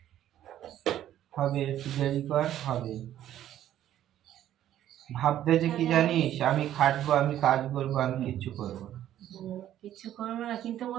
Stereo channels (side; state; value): left; quieter; 11.9 dB